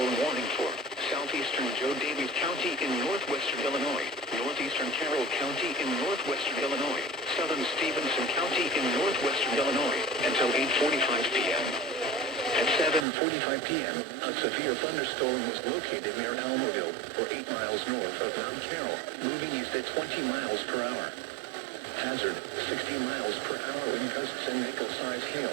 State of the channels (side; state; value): left; drops out; at 13.1 s